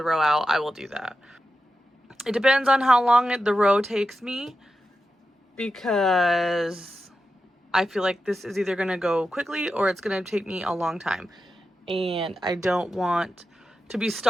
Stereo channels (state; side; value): normal; both; correlation 0.90